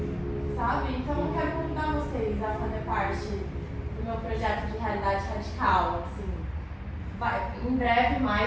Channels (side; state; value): both; identical; correlation 1.00